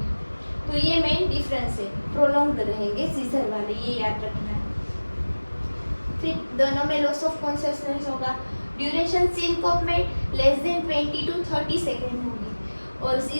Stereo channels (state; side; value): inverted; both; correlation -1.00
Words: तो ये मेन डिफरेंस है, प्रोलॉन्ग्ड रहेंगे सीजर वाले, ये याद रखना है। फिर दोनों में लॉस ऑफ कॉन्शियसनेस होगा। ड्यूरेशन सिंकोप में लेस देन 20 to 30 सेकेंड होगी, और